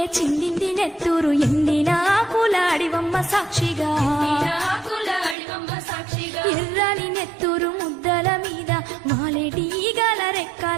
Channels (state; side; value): drops out; left; at 5.4 s